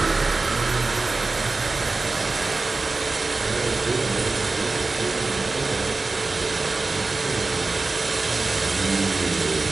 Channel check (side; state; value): left; quieter; 3.6 dB